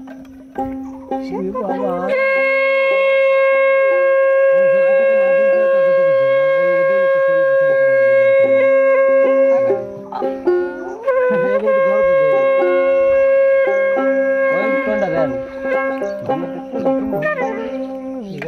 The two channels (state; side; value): identical; both; correlation 1.00